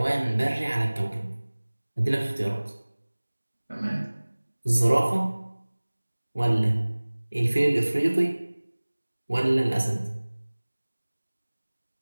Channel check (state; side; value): inverted; both; correlation -1.00